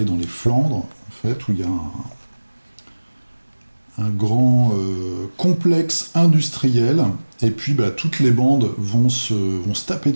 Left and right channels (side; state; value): both; inverted; correlation -1.00